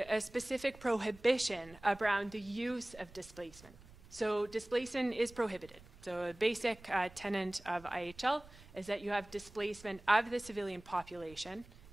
specific prohibition around the use of displacement. So displacement is prohibited. So a basic tenet of IHL is that you have displacement of the civilian population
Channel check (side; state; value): right; noise; rumble, 21 dB below the sound